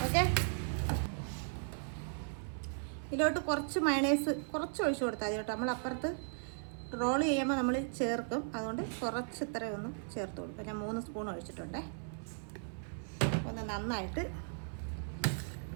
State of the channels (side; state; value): left; silent; 53 dB below the other